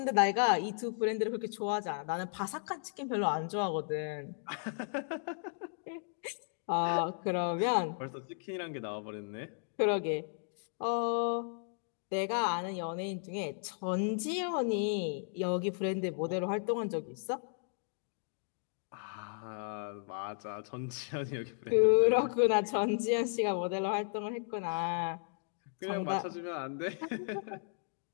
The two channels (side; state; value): right; silent; digital silence